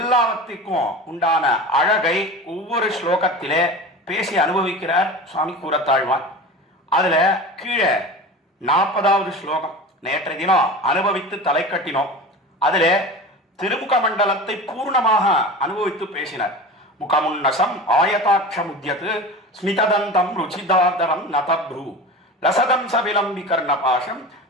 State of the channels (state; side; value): normal; both; correlation 0.32